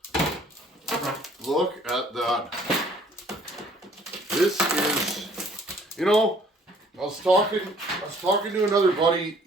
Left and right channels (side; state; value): both; normal; correlation 0.58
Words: Look at that. This is, you know, I was talking to another buddy